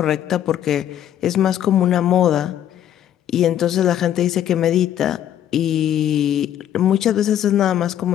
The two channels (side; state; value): right; quieter; 10.8 dB